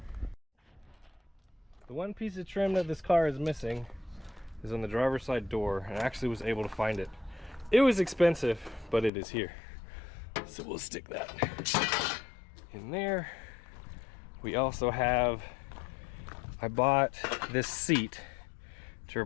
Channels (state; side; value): drops out; right; at 9.1 s